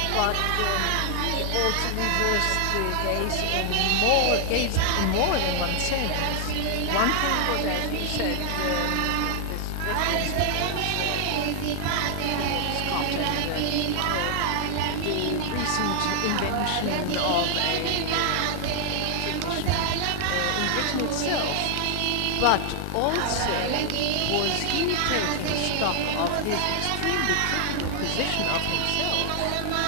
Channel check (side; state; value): both; different; correlation 0.00